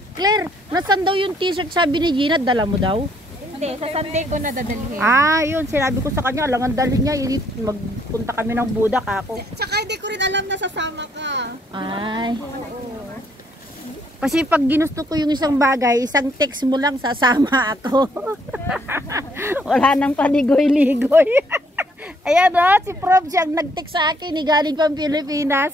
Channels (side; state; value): both; normal; correlation 0.68